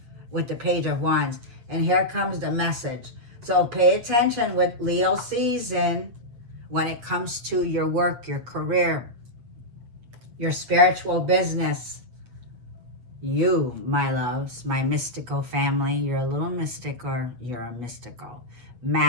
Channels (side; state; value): left; late; 8.5 ms